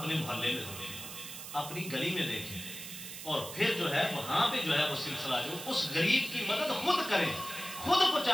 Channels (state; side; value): noise; right; hiss, 10 dB below the sound